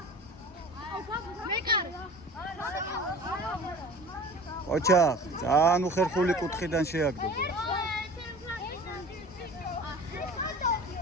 ყოჩაღ, ძალიან უხერხული კუთხიდან შეაგდო.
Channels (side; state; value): both; normal; correlation 0.41